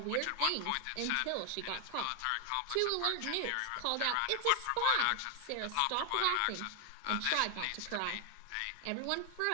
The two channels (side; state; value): both; different; correlation 0.00